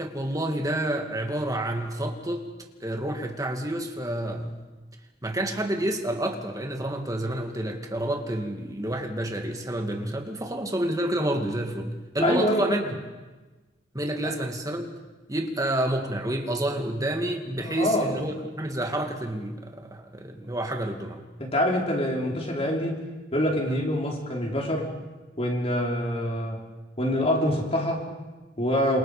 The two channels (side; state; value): both; normal; correlation 0.57